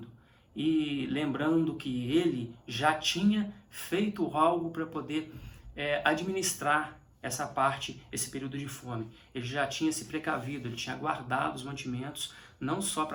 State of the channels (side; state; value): both; identical; correlation 1.00